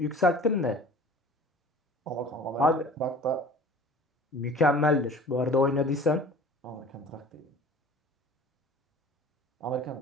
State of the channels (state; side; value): normal; both; correlation 0.44